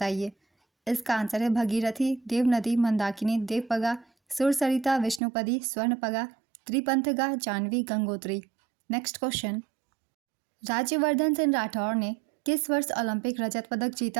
इसका आंसर है भगीरथी, देवनदी, मंदाकिनी, देवपगा, सुरसरिता, विष्णुपदी, स्वर्णपगा, त्रिपंथगा, जाह्नवी, गंगोत्री। नेक्स्ट क्वेश्चन, राज्यवर्धन सिंह राठौर ने किस वर्ष ओलंपिक रजत पदक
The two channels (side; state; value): left; drops out; at 5.2 s